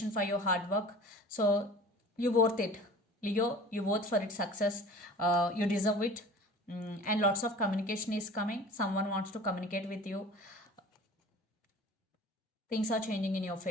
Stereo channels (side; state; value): both; normal; correlation 0.42